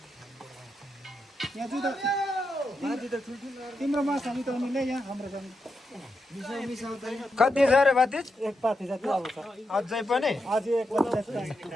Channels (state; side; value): normal; both; correlation 0.85